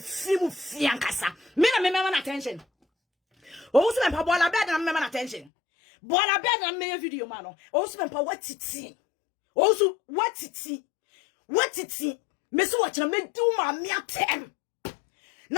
mu fi ankasa me na me na attention o so me pa bola bed na me na attention bola bed na me video ma no o so me pa watiti o so watiti Messi watching me do my meatem.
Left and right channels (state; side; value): drops out; right; at 5.5 s